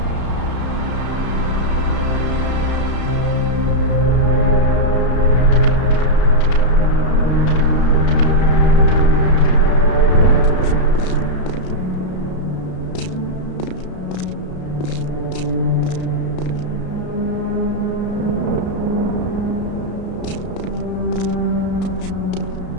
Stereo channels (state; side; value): late; right; 33 ms